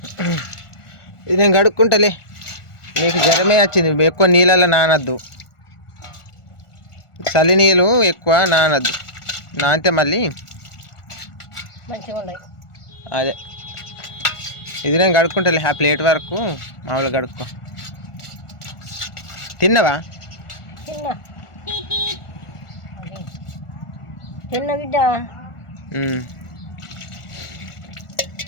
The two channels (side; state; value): right; late; 1.4 ms